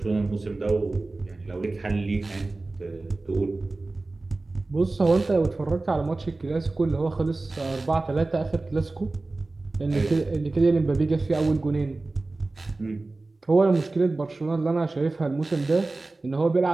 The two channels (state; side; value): quieter; left; 3.2 dB